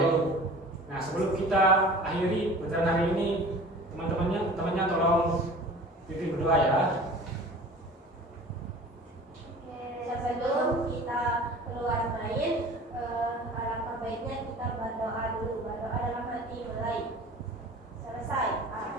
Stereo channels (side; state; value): both; normal; correlation 0.42